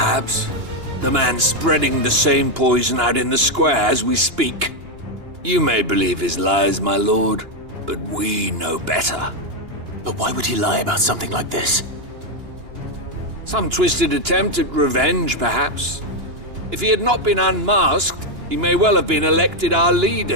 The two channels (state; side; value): late; left; 2.9 ms